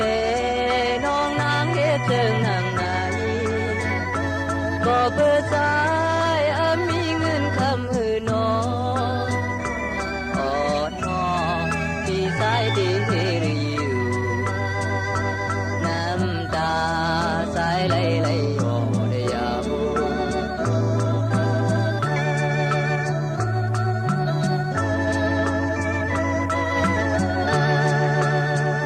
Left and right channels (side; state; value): both; identical; correlation 1.00